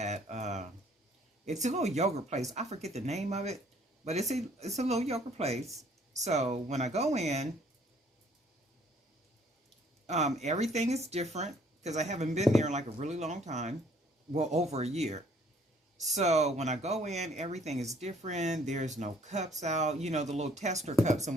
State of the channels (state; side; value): normal; both; correlation 0.61